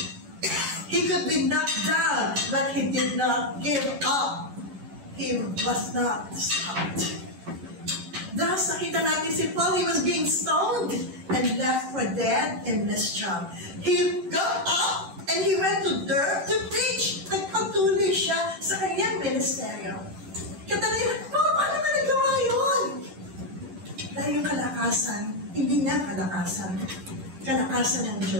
He could be knocked down, but he did not give up. He was not stopped. Thus, nakita natin si Paul, he was being stoned and left for dead in Lystra. He got up and he went to Derbe to preach. Nagpatuloy siya sa kanyang ministeryo. Katanay, paano ba nagawa yun? Dahil yung kalakasan, hindi na kalakasan. Kalakasan ng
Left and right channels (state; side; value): late; left; 10 ms